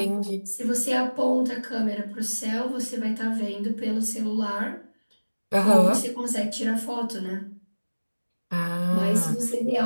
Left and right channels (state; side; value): inverted; both; correlation -1.00